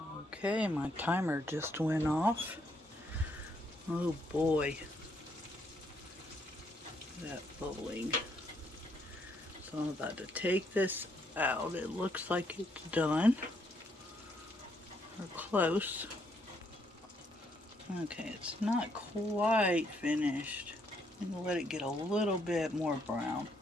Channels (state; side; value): normal; both; correlation 0.73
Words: Okay, my timer just went off. Oh boy. That bubbling. So I'm about to take this out. It looks like it's done. Or close. Okay, it's not quite finished. I'm going to let it get a little bit more brown.